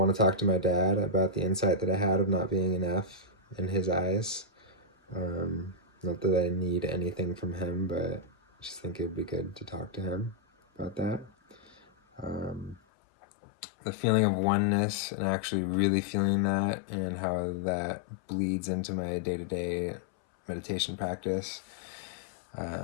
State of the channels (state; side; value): drops out; right; at 12.8 s